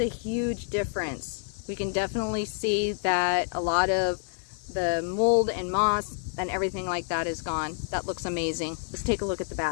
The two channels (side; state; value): right; silent; 59 dB below the other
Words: huge difference. We can definitely see that a lot of the mold and moss and everything like that is gone. That looks amazing. Let's take a look at the